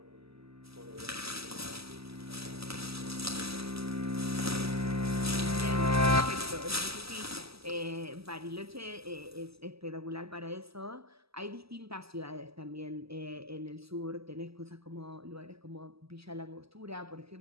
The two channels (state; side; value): late; left; 0.77 ms